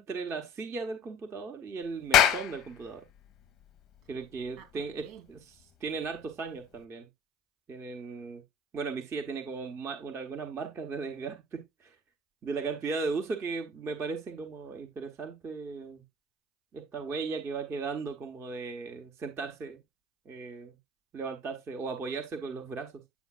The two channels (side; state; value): both; normal; correlation 0.45